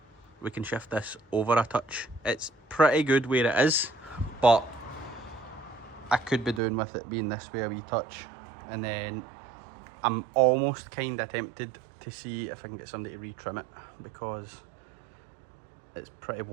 we can shift this over a touch. It's pretty good where it is, but I could be doing with it being this way a wee touch. And then I'm almost kind of tempted to see if I can get somebody to retrim it because it's pretty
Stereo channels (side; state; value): left; drops out; at 6.6 s